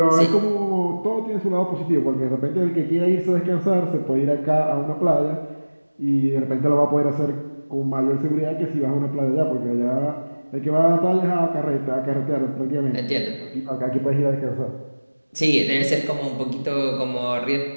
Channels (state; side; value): inverted; both; correlation -1.00